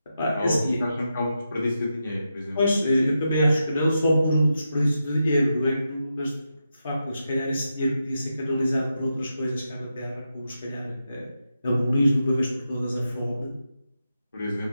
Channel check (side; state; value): both; inverted; correlation -0.87